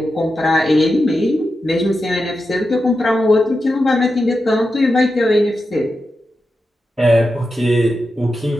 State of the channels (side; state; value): both; normal; correlation 0.89